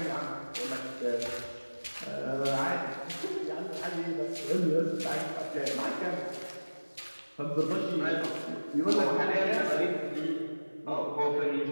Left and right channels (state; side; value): inverted; both; correlation -1.00